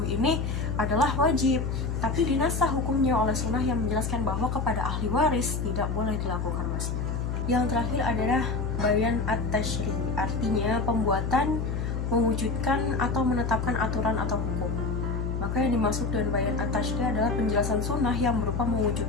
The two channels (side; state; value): left; noise; hum, 2 dB below the sound